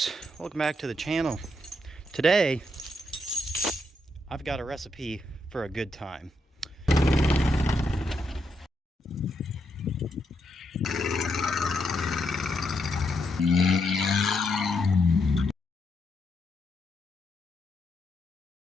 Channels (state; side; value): normal; both; correlation 0.80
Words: welcome back to the channel. Today, I've got a recipe for a good time.